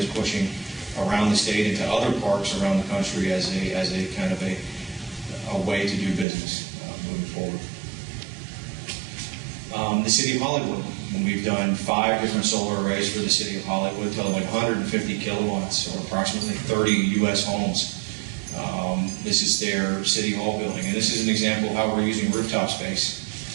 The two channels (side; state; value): left; drops out; at 6.2 s